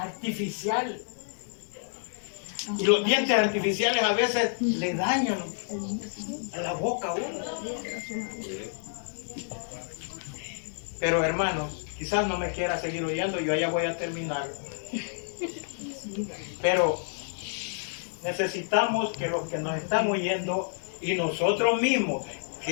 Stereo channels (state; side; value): silent; right; digital silence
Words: Y los dientes artificiales a veces le dañan a la boca a uno. Pero hermanos, quizás no me quiera seguir oyendo, yo ya voy a terminar. Pero necesitamos que los que nos están oyendo y nosotros mismos